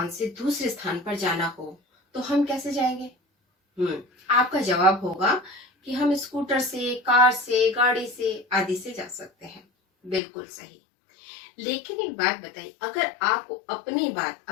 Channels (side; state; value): right; drops out; at 10.2 s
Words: से दूसरे स्थान पर जाना हो तो हम कैसे जाएंगे? आपका जवाब होगा कि हम स्कूटर से, कार से, गाड़ी से आदि से जा सकते हैं। बिल्कुल सही। लेकिन एक बात बताइए, अगर आपको अपनी बात